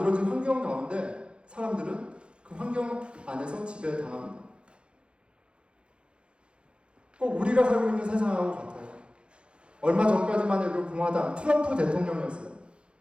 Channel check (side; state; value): left; late; 0.056 ms